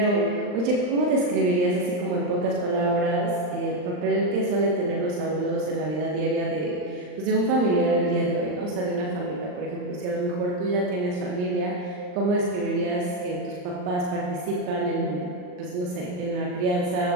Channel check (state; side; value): late; left; 39 ms